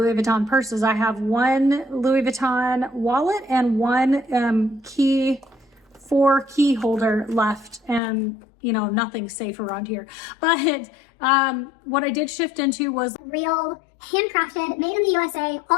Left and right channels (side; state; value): right; drops out; at 8.0 s